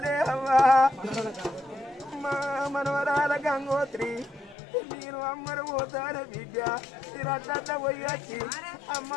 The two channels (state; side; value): drops out; right; at 4.5 s